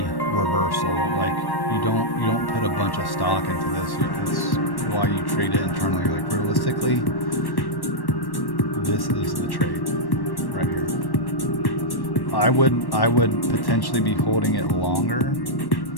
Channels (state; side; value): late; right; 1.1 ms